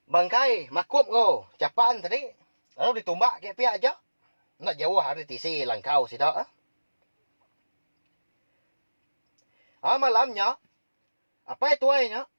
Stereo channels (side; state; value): both; inverted; correlation -1.00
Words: bangkai makup ngo capan tadi lalu ditumbak ke pihak aja nak jauh hari tisi langkau sidak malamnya apa itu ainya